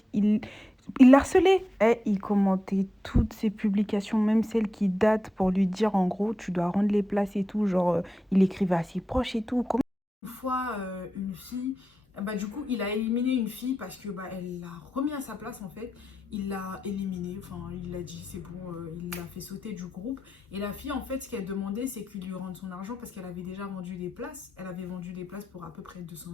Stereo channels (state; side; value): normal; both; correlation 0.90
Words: Il l'a harcelée. Et il commentait toutes ses publications, même celles qui datent pour lui dire en gros tu dois rendre les places et tout. Genre il écrivait à ses proches et tout. Une fois, une fille, bah, du coup, il a éliminé une fille parce que bah, elle l'a remis à sa place en fait. Il l'a éliminée, enfin, il l'a dit, c'est bon, il l'a fait sauter du groupe. Et la fille, en fait, ce qu'elle demandait, c'est qu'il lui rende son argent parce qu'elle avait déjà vendu des places. Elle avait vendu des places pour à peu près 200